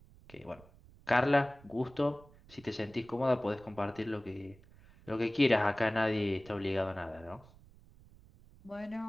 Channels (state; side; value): noise; right; rumble, 24 dB below the sound